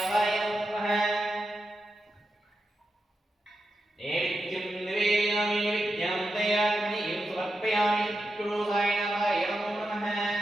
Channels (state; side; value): normal; both; correlation 0.88